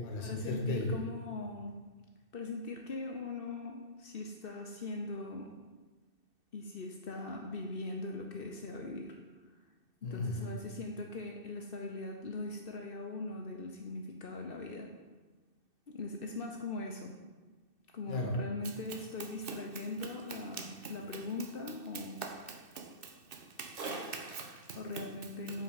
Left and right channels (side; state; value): right; late; 2.6 ms